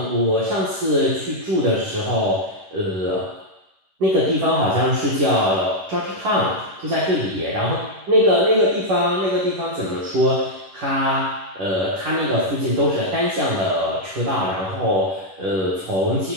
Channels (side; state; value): left; late; 11 ms